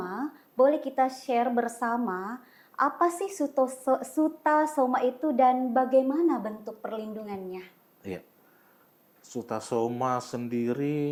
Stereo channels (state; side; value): identical; both; correlation 1.00